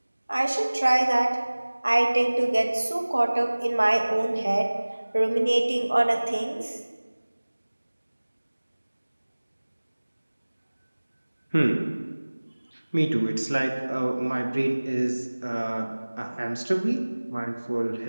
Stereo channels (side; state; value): both; inverted; correlation -1.00